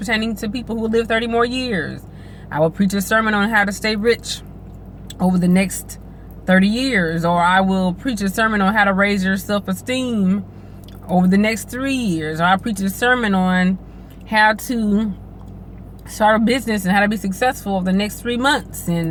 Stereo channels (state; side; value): identical; both; correlation 1.00